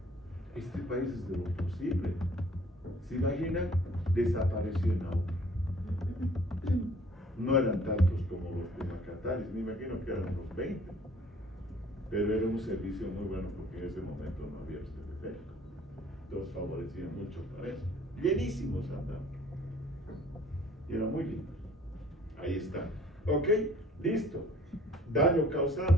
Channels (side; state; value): both; normal; correlation 0.55